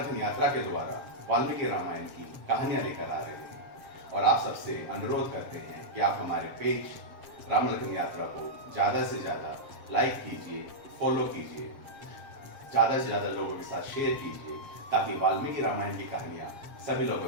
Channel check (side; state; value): left; late; 7.5 ms